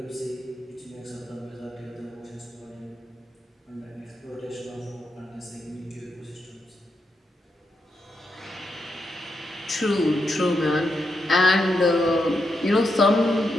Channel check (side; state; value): both; normal; correlation 0.83